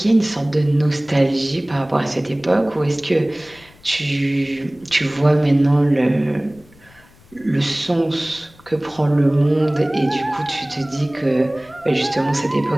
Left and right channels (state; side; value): noise; left; rumble, 27 dB below the sound